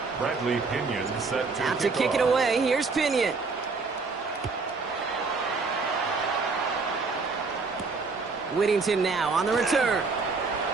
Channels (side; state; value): left; quieter; 4.3 dB